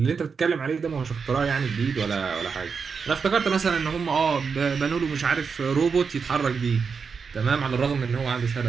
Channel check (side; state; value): left; quieter; 5.6 dB